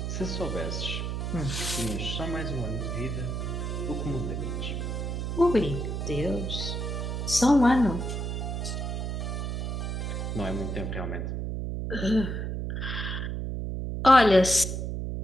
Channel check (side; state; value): right; noise; hum, 2 dB below the sound